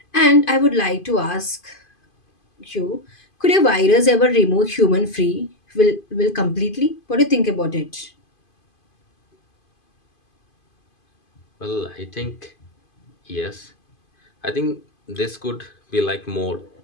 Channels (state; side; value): late; right; 2.5 ms